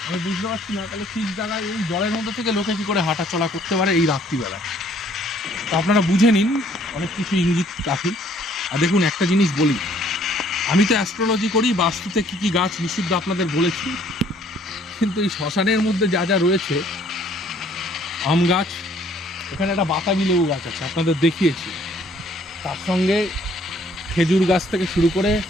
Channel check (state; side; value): normal; both; correlation 0.61